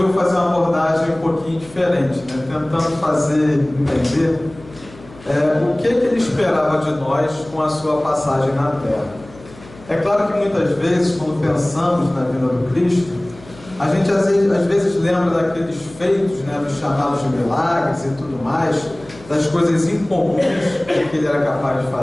fazer uma abordagem um pouquinho diferente, né? Tentando fazer entender o que ele esperava de nós com a sua passagem na Terra. É claro que muitas vezes, quando pensamos na vida do Cristo, a gente às vezes lembra daqueles feitos, né, dos chamados de milagres e tudo mais, das coisas incomuns que ele era capaz de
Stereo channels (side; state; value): left; noise; hum, 21 dB below the sound